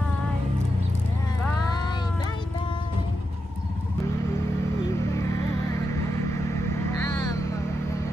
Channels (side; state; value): both; normal; correlation 0.87